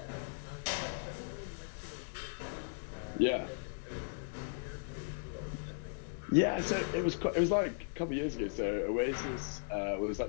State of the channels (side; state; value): right; silent; digital silence